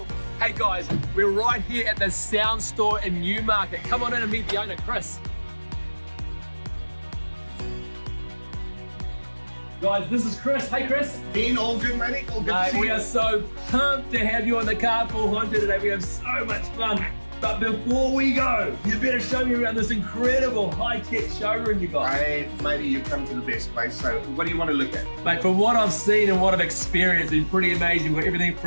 guys, we're right here at the sound store in Newmarket. Come on in and meet the owner, Chris. Guys, this is Chris. Hey Chris. Dean, all good, matey? All good to see you. We are so pumped to have you on the Carpool Honcho today. We have so much fun. But before we go, you better show me around this incredible high-tech showroom you got. Hey, matey, you've come to the best place. So what do you want to look at? Mate, from what I've seen and what I've experienced, it's pretty amazing. We've got everything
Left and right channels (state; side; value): inverted; both; correlation -1.00